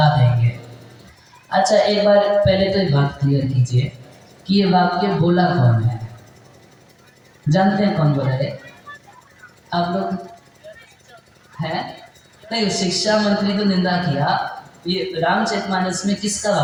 देंगे। अच्छा, एक बार पहले तो एक बात क्लियर कीजिए कि ये वाक्य बोला कौन है? जानते हैं कौन बोला है? आप लोग हैं? नहीं, शिक्षा मंत्री को निंदा किया। ये रामचरितमानस में किसका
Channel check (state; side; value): identical; both; correlation 1.00